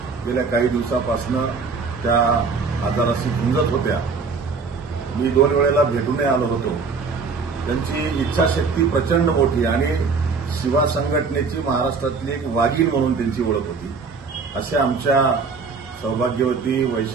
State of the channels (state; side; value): quieter; left; 4.8 dB